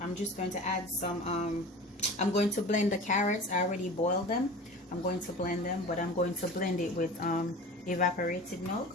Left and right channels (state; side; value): normal; both; correlation 0.36